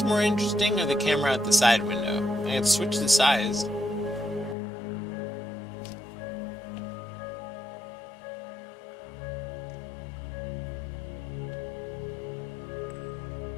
more interesting, or the camera at the side window? I can switch the size.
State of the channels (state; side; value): drops out; right; at 4.5 s